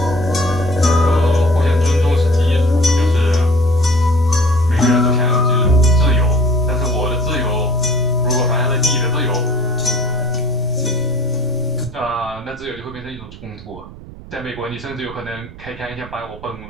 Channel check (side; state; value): right; noise; rumble, 16 dB below the sound